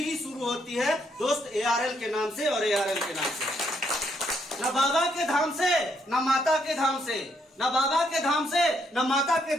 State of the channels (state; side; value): normal; both; correlation 0.74